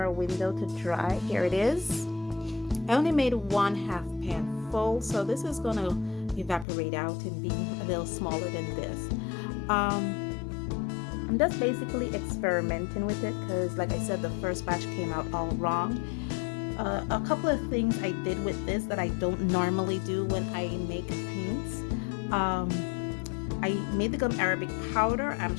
a window to dry. Here it is. I only made 1/2 pan full, so this is gonna evaporate out and be a little smaller than this. I'm just basically experimenting with it because, like I said, the first batch came out all wrong. A couple of things I did with this that I don't normally do when I make paints. I made the gum arabic powder. I'm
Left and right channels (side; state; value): right; drops out; at 6.7 s